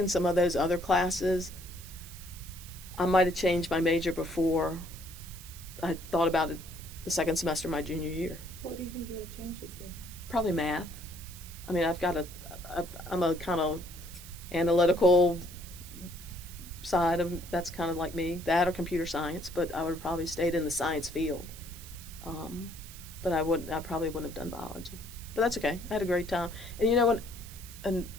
some of those other classes, I might have changed my major before I thought about it the second semester of my junior year. What do you think you would have changed it to? Probably math. I'm a kind of analytical side of, that's kind of like me, that or computer science, but I would have probably stayed in the science field. But I probably wouldn't have done biology. But that's okay. I had a great time. And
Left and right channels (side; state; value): right; noise; hiss, 16 dB below the sound